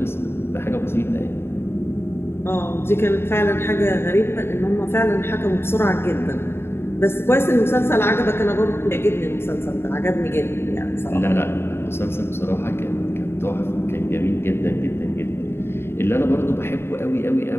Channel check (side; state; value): right; late; 0.11 ms